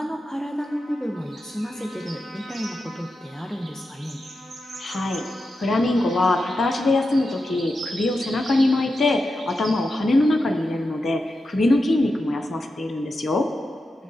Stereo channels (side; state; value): both; normal; correlation 0.89